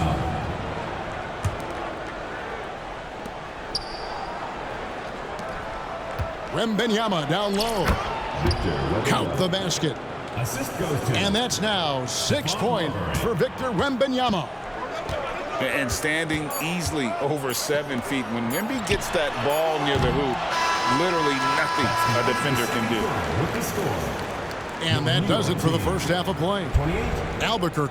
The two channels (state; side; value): identical; both; correlation 1.00